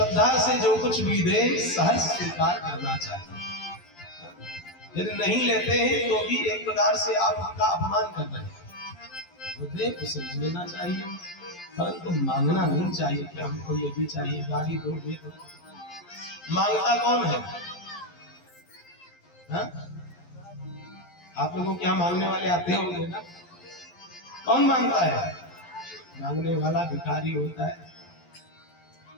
से जो कुछ भी दे सहर्ष स्वीकार करना चाहिए। यदि नहीं लेते हैं तो भी एक प्रकार से आप उनका अपमान कर रहे हैं। तो दे उसे लेना चाहिए, परंतु मांगना नहीं चाहिए कि हमको ये भी चाहिए, गाड़ी दो, ये दो। मांगता कौन है? हा? आप लोगों के यहाँ मांगने वाले आते होंगे ना? कौन मांगता है? मांगने वाला भिखारी होता है,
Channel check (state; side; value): late; right; 11 ms